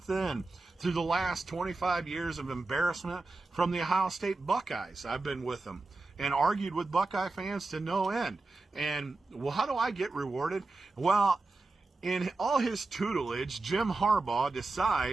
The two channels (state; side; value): quieter; left; 3.4 dB